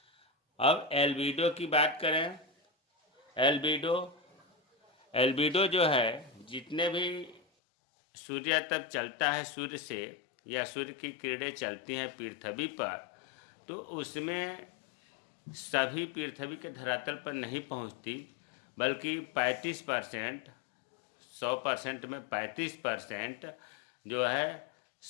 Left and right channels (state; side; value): drops out; right; at 7.4 s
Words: अब एल्बिडो की बात करें। एल्बिडो जो है, जितने भी सूर्य तप चलता है सूर्य से या सूर्य की किरणें चलती हैं पृथ्वी पर, तो उसमें सभी पृथ्वी के धरातल पर नहीं पहुंचती, बल्कि 35%, 100% में 35% जो है